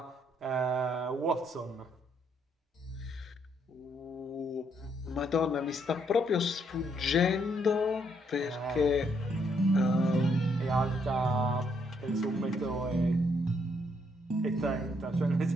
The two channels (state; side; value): normal; both; correlation 0.72